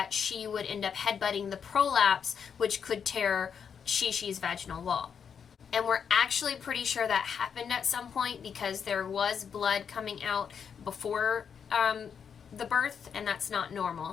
she would end up headbutting the prolapse, which could tear Shi-Shi's vaginal wall. And we're actually pretty sure that happened at some point because there was blood coming out before the birth, and that's not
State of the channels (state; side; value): quieter; right; 7.1 dB